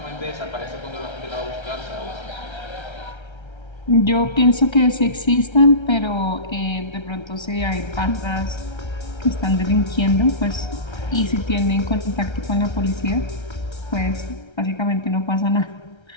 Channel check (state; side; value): late; right; 1.3 ms